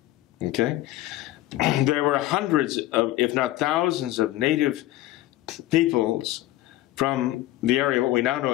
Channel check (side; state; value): right; quieter; 15.8 dB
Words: Okay? There were hundreds of, if not thousands of native peoples from the area, what we now know